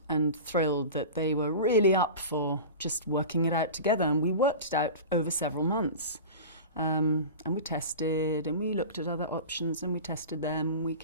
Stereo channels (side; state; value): both; inverted; correlation -0.32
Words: thrilled that they were really up for just working it out together, and we worked it out over several months. And we tested, and we looked at other options, and we tested them. We